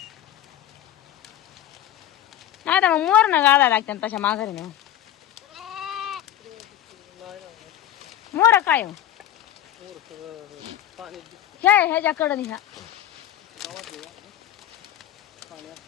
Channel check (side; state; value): right; quieter; 11.9 dB